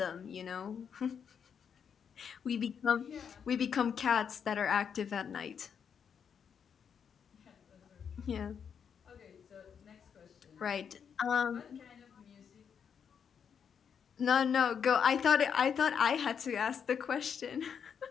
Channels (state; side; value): quieter; right; 7.3 dB